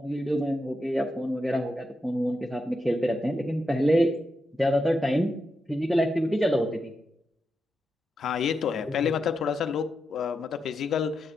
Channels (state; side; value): normal; both; correlation 0.86